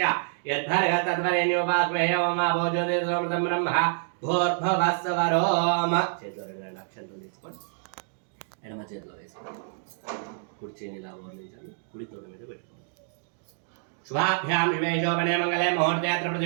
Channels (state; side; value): silent; left; digital silence